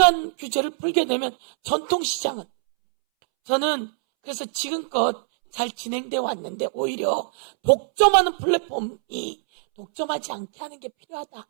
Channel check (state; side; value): silent; left; 63 dB below the other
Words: 규제를 풀게 되면 전통시장은 저는 그래서 지금껏 잘 진행되어 왔는데 오히려 독점하는 플랫폼이 독점하지 않게 하는 게 필요하다